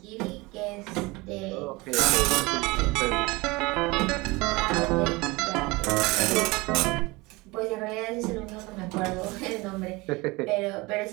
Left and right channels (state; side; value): quieter; left; 23.5 dB